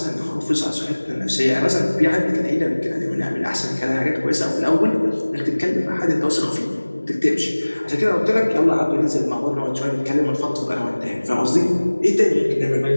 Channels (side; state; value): both; inverted; correlation -1.00